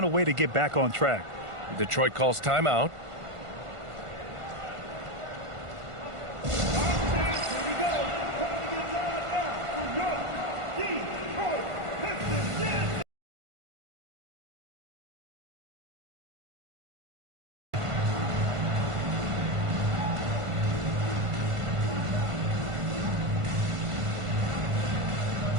a way to get back on track. Detroit calls timeout.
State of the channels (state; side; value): late; left; 1.5 ms